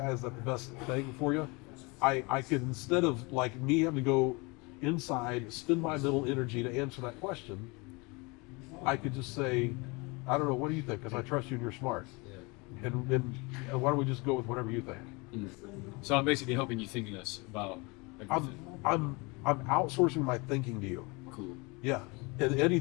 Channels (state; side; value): quieter; right; 27.4 dB